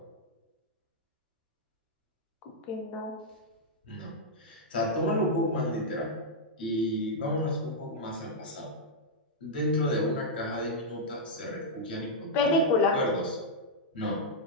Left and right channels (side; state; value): both; normal; correlation -0.05